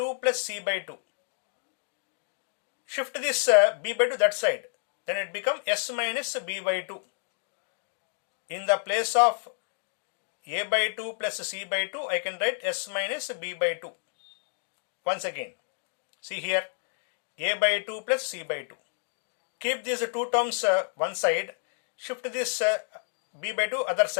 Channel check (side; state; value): right; silent; digital silence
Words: plus c by 2. Shift this b by 2 that side. Then it becomes s minus b by 2. In the place of a by 2 plus c by 2, I can write s minus b by 2. Once again, see here, a by 2 plus c by 2. Keep these two terms one side, shift this b by 2 other